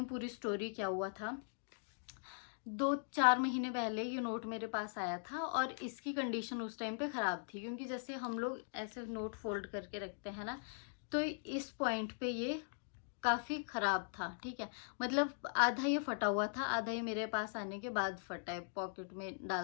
पूरी स्टोरी क्या हुआ था। 2-4 महीने पहले ये नोट मेरे पास आया था और इसकी कंडीशन उस टाइम पे ख़राब थी, क्योंकि जैसे हम लोग ऐसे नोट फोल्ड करके रखते हैं ना, तो इस पॉइंट पे ये काफ़ी ख़राब था। ठीक है, मतलब आधा ये फटा हुआ था, आधा ये मेरे पास आने के बाद फटा है। पॉकेट में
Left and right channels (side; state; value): right; silent; digital silence